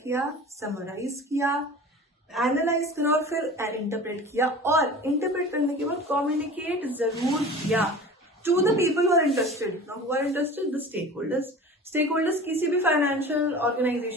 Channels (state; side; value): normal; both; correlation 0.38